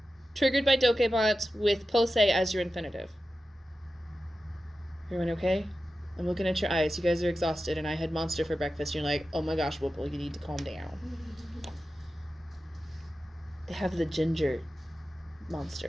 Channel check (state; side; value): normal; both; correlation 0.93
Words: triggered by dokebant with pose as your infinitive. Everyone okay? I'm looking at your eyes. You guys are exhausted, and I had Monster for breakfast. You're like, oh my gosh, Whipple, you need to calm down. They have the ginger